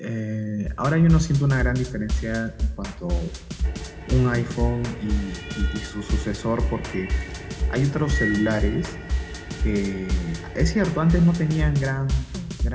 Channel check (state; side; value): identical; both; correlation 1.00